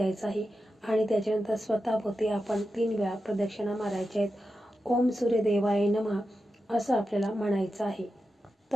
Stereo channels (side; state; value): both; normal; correlation 0.90